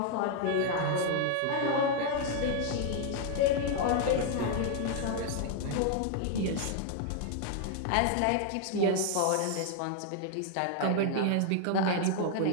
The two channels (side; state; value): both; different; correlation 0.00